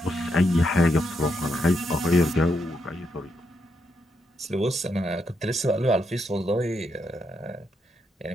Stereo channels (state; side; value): normal; both; correlation 0.80